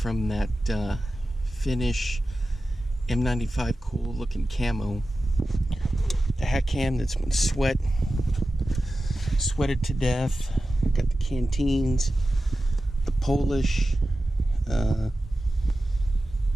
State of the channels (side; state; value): both; normal; correlation 0.94